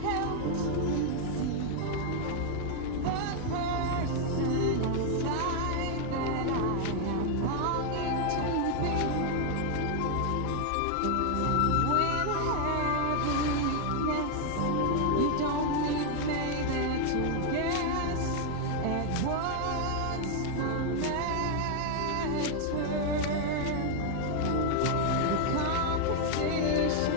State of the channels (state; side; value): different; both; correlation 0.00